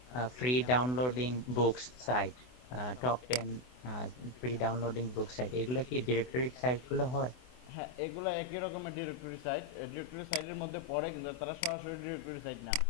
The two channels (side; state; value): right; late; 24 ms